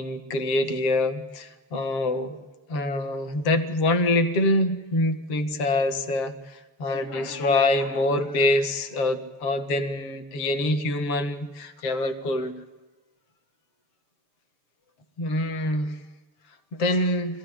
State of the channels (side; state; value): right; late; 6.9 ms